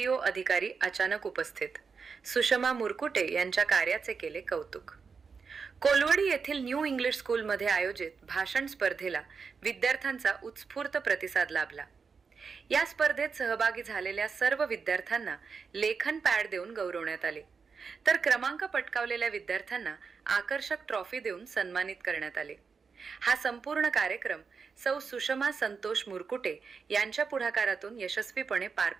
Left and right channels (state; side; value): quieter; left; 5.4 dB